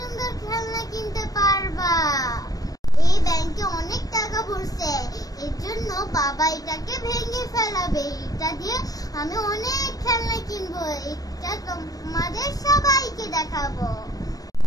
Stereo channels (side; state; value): right; late; 0.18 ms